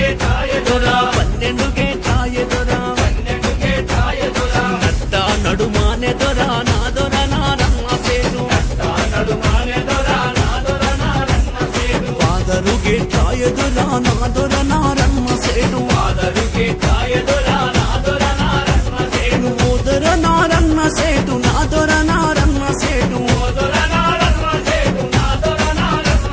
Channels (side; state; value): both; identical; correlation 1.00